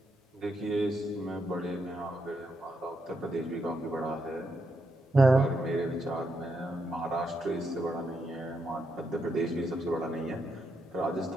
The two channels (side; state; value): both; normal; correlation 0.81